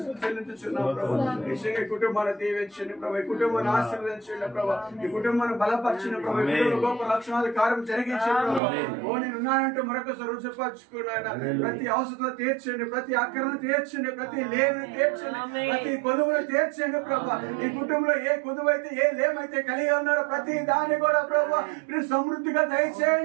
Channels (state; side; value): drops out; left; at 8.6 s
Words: చెల్లించుచున్నాం ప్రభా నిశ్చయంగా కుటుంబాన్ని దీవించండి ప్రభా ఈ కుటుంబాన్ని ఆశీర్వదించండి ప్రభా ఈ కుటుంబాన్ని బలపరిచిన ప్రభా ఈ కుటుంబ గొప్ప లక్షణాలు కార్యం జరిగించండి ప్రభా ఓ నేను ఉన్నానంటూ మరొకసారి రుజుపరుచుకున్నాయన ప్రతి అవసరం తీర్చండి ప్రతి అక్కరను తీర్చండి ప్రతి లేని తీర్చండి ప్రతి కొదువును తీర్చండి ప్రభా ఈ కుటుంబంలో ఏ కొదువు అయితే ఏ లేమైతే కలిగి ఉన్నారో ప్రతి దాన్ని కూడా ప్రభా మీరు సమృద్ధిగా